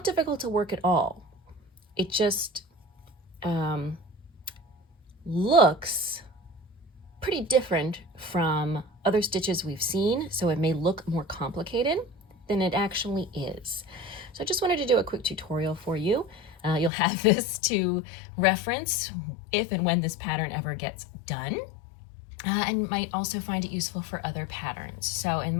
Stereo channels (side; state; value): right; drops out; at 16.9 s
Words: difficult to work at all. It just looks pretty different from other stitches we've seen, so it may look more complicated than it actually is. So I just wanted to do a quick tutorial for you. You'll have this to reference if and when this pattern ever gets done, and might also find it useful for other patterns. So in